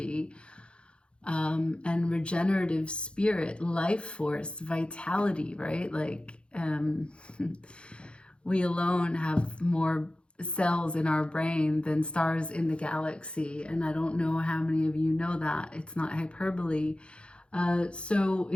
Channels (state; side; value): late; right; 0.057 ms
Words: and regenerative spirit, life force, vitality, right? Like we alone have more cells in our brain than stars in the galaxy. And I don't know how many of you know that. It's not hyperbole. So